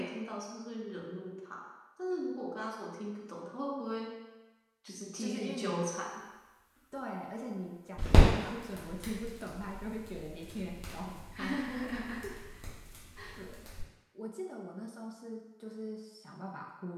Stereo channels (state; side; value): identical; both; correlation 1.00